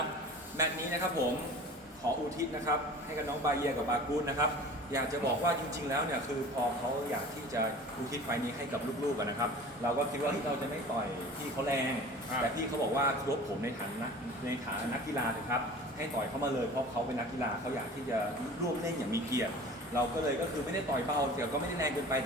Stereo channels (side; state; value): both; normal; correlation 0.41